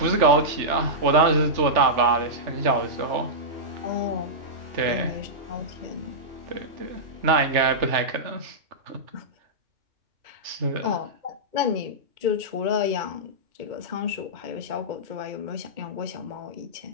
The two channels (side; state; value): left; late; 3.3 ms